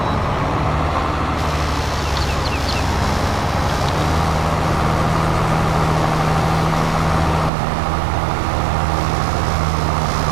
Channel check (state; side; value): drops out; left; at 7.5 s